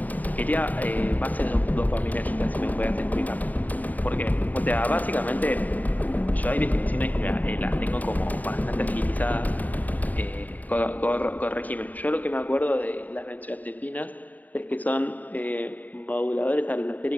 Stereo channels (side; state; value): right; late; 0.079 ms